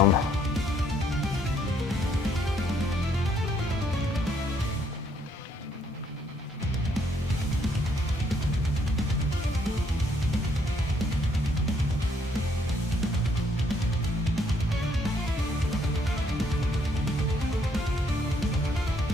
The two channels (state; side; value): normal; both; correlation 0.68